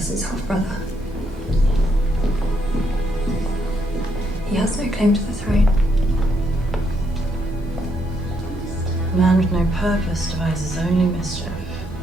half-brother. He has no claim to the throne. A man with no purpose devises only mischief.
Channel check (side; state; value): both; normal; correlation 0.75